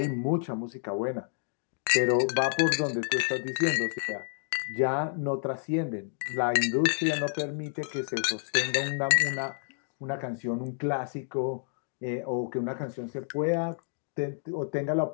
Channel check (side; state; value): right; silent; digital silence